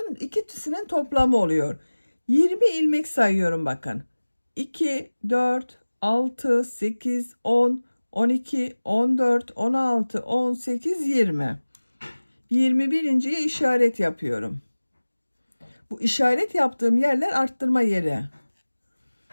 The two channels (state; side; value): inverted; both; correlation -1.00